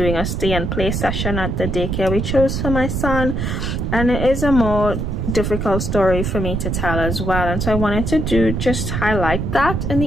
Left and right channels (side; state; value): right; noise; rumble, 2 dB below the sound